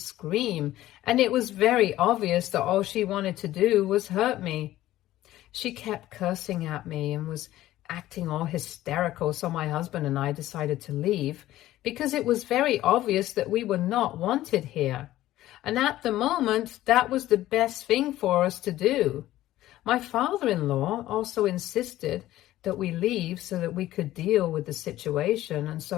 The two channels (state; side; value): quieter; right; 14.9 dB